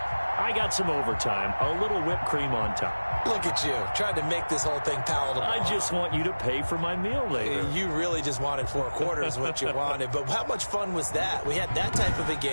got some overtime, a little whipped cream on top. Look at you, trying to make this whole thing palatable. I just want you to pay for my meal later. You really just wanted 4 quarters, what you wanted. But how much fun was that? We had that type of a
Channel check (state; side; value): inverted; both; correlation -1.00